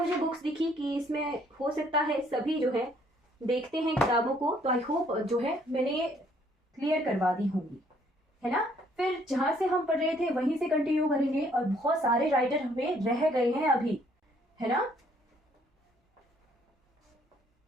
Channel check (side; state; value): both; normal; correlation 0.64